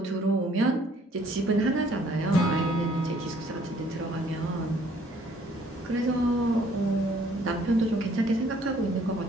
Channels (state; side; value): normal; both; correlation 0.61